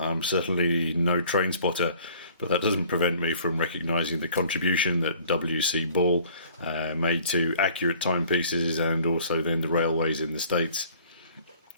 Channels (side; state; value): both; inverted; correlation -0.53